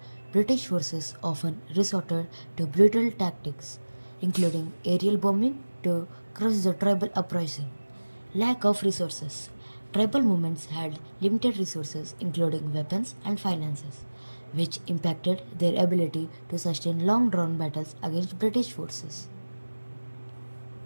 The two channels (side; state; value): both; inverted; correlation -1.00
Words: British forces often resorted to brutal tactics, including aerial bombing, to crush the tribal uprising. Lack of resources. Tribal movements had limited resources, including weapons and finances, which impacted their ability to sustain long drawn battles against British forces.